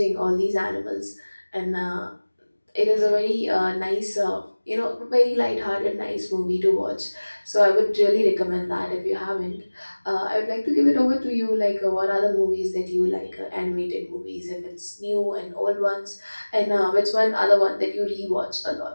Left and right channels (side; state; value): both; inverted; correlation -1.00